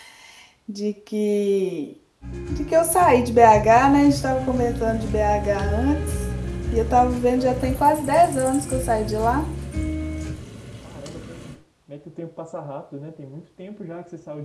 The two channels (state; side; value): identical; both; correlation 1.00